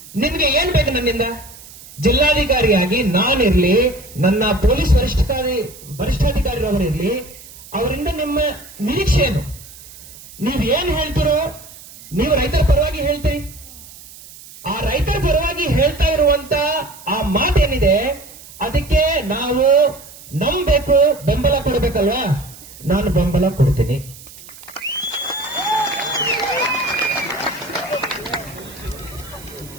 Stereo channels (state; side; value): noise; right; hiss, 19 dB below the sound